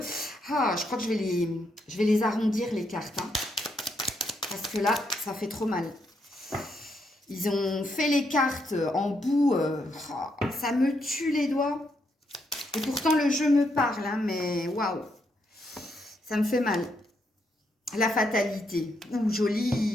je crois que je vais les arrondir les cartes, hein, parce que là, ça fait trop mal. Ils ont fait les cartes en bout, ça me tue les doigts. Et pourtant, le jeu me parle, hein, mais waouh, ça me fait mal. La fatalité, ouh,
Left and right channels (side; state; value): both; normal; correlation 0.78